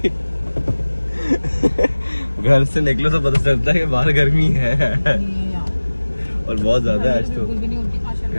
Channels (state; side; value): inverted; both; correlation -1.00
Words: घर से निकलो तो पता चलता है कि बाहर गर्मी है और बहुत ज़्यादा है आज तो।